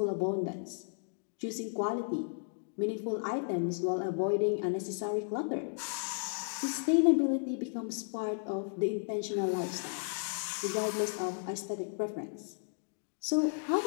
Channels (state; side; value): silent; right; digital silence